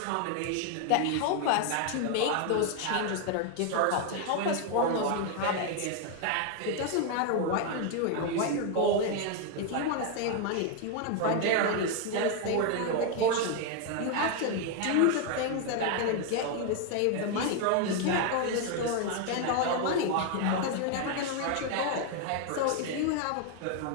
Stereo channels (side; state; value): both; different; correlation 0.01